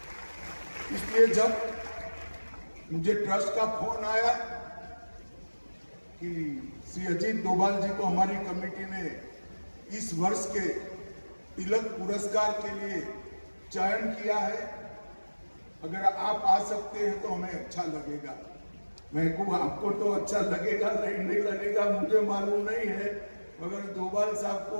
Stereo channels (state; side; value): inverted; both; correlation -1.00